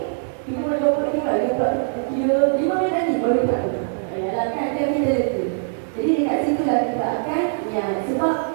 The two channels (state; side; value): silent; left; digital silence